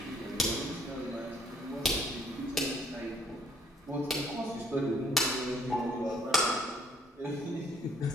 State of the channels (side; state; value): both; normal; correlation 0.62